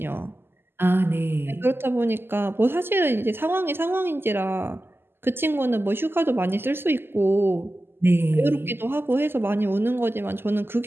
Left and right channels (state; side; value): late; left; 0.11 ms